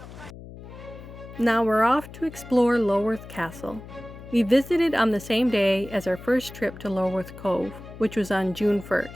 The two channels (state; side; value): noise; left; hum, 15 dB below the sound